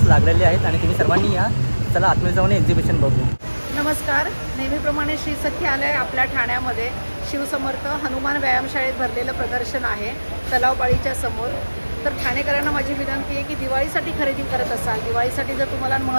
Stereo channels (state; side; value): inverted; both; correlation -1.00